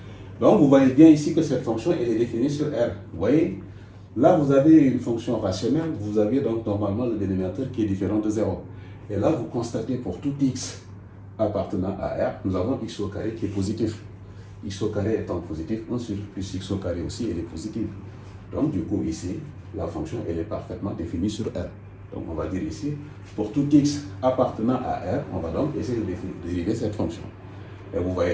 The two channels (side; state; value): both; identical; correlation 1.00